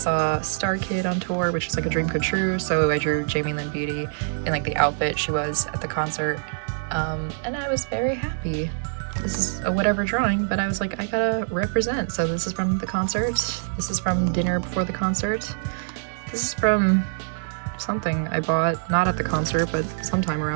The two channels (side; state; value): left; silent; digital silence